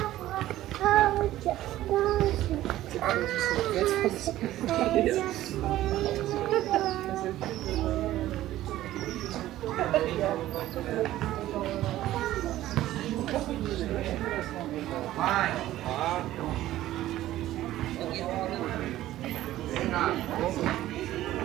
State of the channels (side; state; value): left; quieter; 14.5 dB